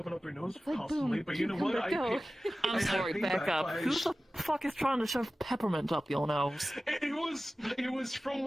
it up their nose constantly, but you know what? I'm sorry, back up. Who the fuck is trying to shove peppermint up your nose? It was from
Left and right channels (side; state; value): both; normal; correlation 0.96